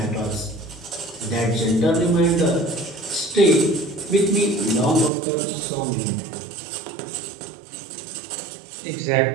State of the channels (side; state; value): left; drops out; at 5.1 s